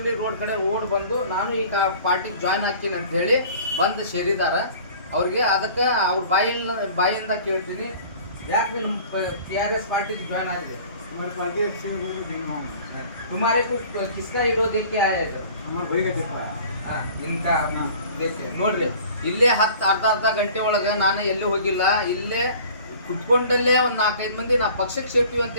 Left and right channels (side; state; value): both; inverted; correlation -0.47